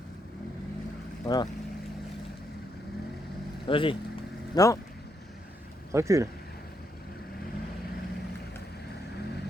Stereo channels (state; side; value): normal; both; correlation 0.78